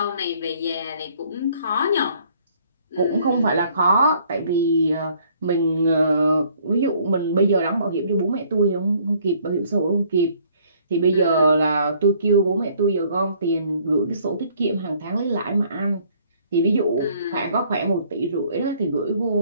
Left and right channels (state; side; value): inverted; both; correlation -0.61